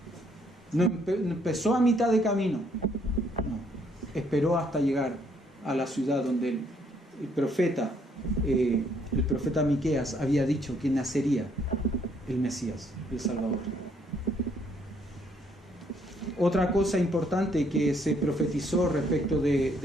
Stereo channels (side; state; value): both; normal; correlation 0.68